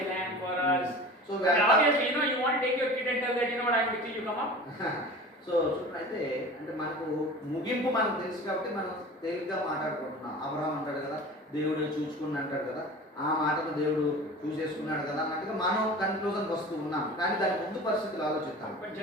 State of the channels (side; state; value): both; normal; correlation 0.37